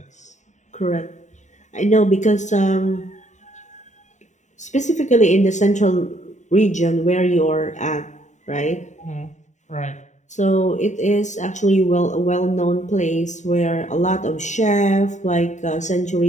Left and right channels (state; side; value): late; right; 0.34 ms